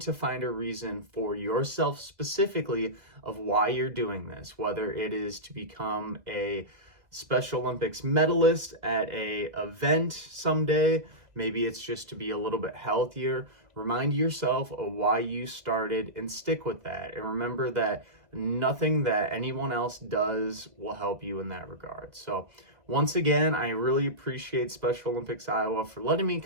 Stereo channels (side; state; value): left; late; 2.0 ms